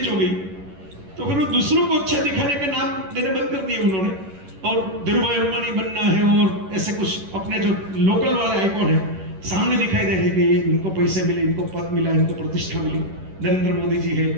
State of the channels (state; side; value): late; left; 11 ms